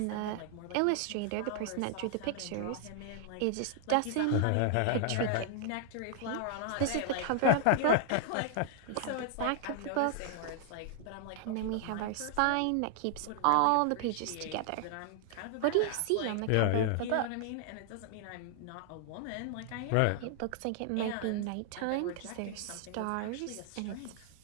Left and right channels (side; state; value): both; different; correlation 0.00